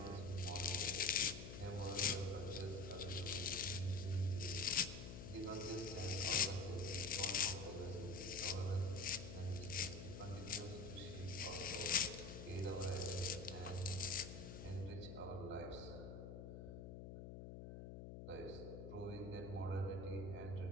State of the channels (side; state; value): left; noise; hum, 9 dB below the sound